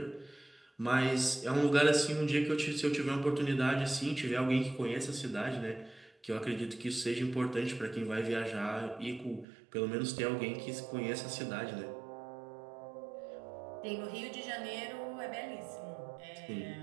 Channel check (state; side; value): drops out; left; at 9.5 s